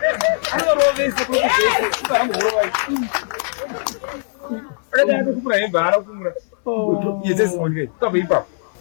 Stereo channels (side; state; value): right; silent; digital silence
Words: anorovese kwekuzese ipahamborovai akati atokumura hembe haana kumura yezesimonikai ukabva ipapo